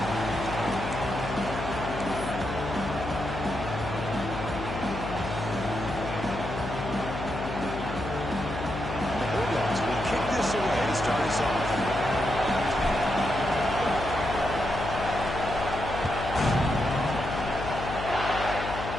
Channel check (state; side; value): noise; left; hum, 6 dB below the sound